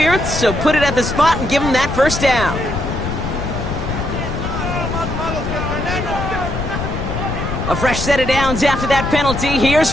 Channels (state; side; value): noise; left; rumble, 4 dB below the sound